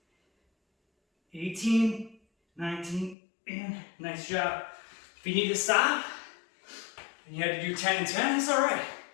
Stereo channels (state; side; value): drops out; right; at 3.2 s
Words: $18, $19, and nice job. If you need to stop, and you had to do 10 and 10, it's all right.